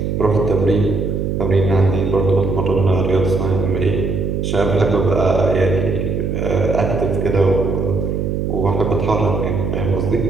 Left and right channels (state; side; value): noise; right; hum, 1 dB below the sound